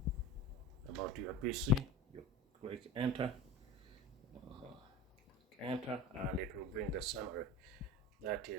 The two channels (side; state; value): both; normal; correlation 0.31